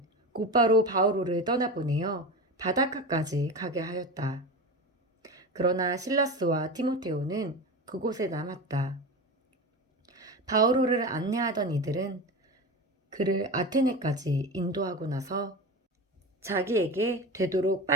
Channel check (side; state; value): both; normal; correlation 0.26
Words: 곧바로 바오로를 떠나보내어 바닷가까지 가게 하였다. 그러나 실라스와 티모테오는 그곳에 남았다. 바오로를 안내하던 이들은 그를 아테네까지 인도하고 나서 자기에게 되도록